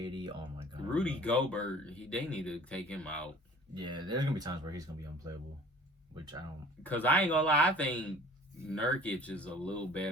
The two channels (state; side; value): normal; both; correlation 0.48